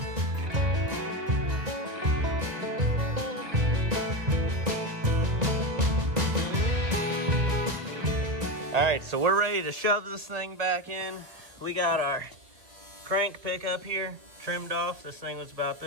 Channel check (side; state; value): left; late; 1.9 ms